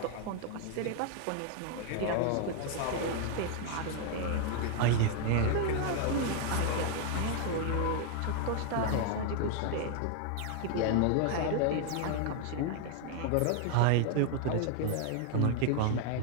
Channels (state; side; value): different; both; correlation 0.00